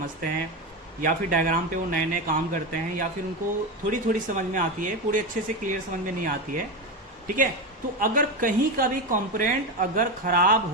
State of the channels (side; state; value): both; normal; correlation 0.16